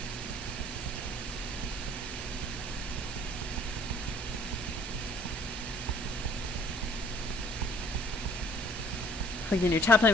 Plug in your top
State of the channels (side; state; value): both; normal; correlation 0.57